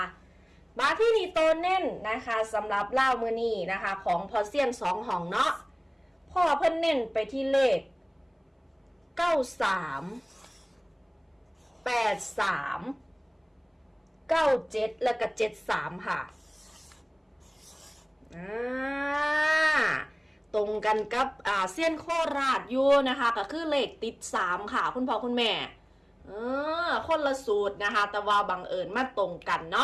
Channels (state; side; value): identical; both; correlation 1.00